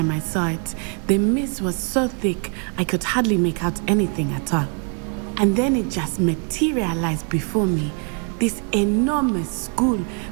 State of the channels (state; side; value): quieter; left; 39.5 dB